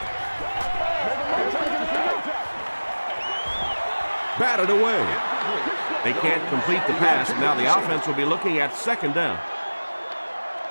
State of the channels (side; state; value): both; inverted; correlation -1.00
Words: Batted away. They can't complete the pass, and now the offense will be looking at 2nd down.